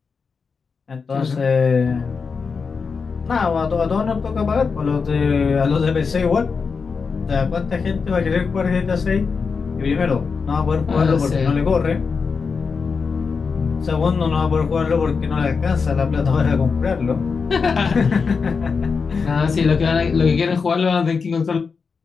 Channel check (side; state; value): right; quieter; 5.2 dB